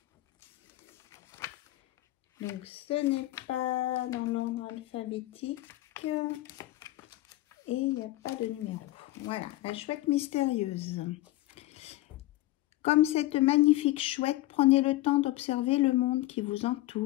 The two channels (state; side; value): quieter; right; 17.3 dB